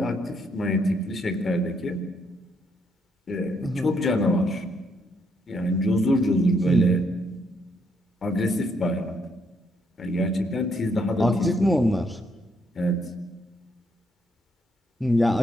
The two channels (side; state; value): both; normal; correlation 0.74